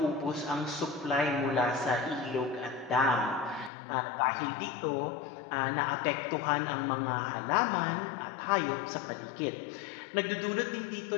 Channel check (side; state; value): right; drops out; at 3.7 s